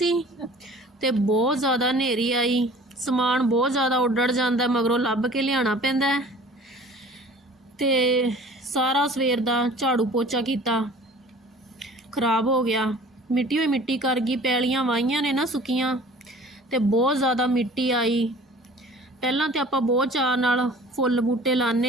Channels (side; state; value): both; normal; correlation 0.47